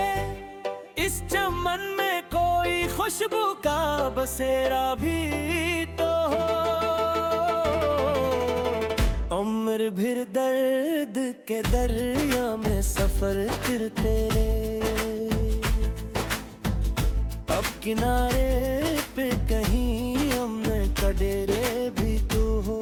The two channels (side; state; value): both; identical; correlation 1.00